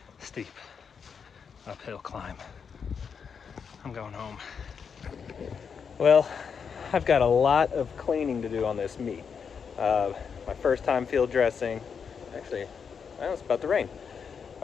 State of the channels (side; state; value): right; quieter; 6.4 dB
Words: uphill climb. I'm going home. Well, I've got a lot of cleaning to do on this meat. My first time field dressing, actually, well, it's about to rain.